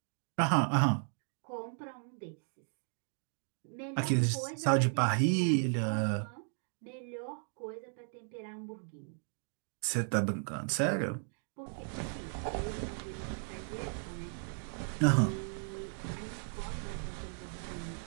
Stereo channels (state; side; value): silent; left; 54 dB below the other